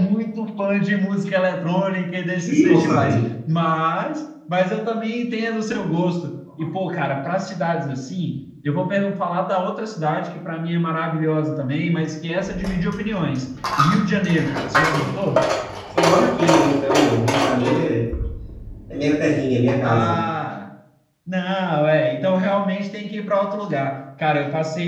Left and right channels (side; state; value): both; identical; correlation 1.00